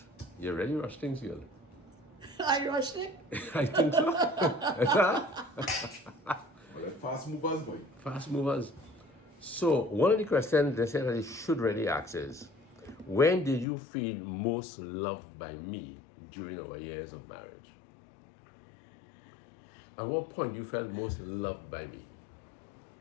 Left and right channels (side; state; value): right; drops out; at 13.7 s